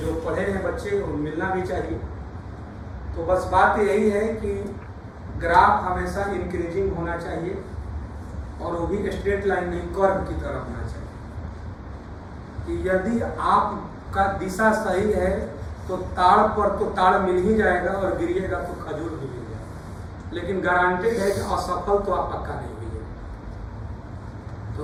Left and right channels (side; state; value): both; identical; correlation 1.00